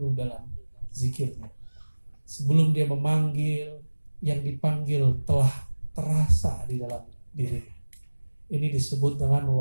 dalam zikirnya. Sebelum dia memanggil, yang dipanggil telah terasa di dalam dirinya. Ini disebut dengan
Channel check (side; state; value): both; inverted; correlation -1.00